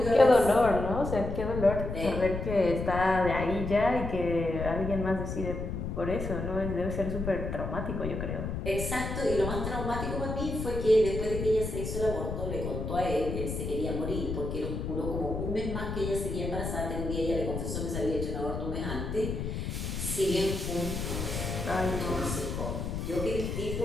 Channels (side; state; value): left; noise; rumble, 4 dB below the sound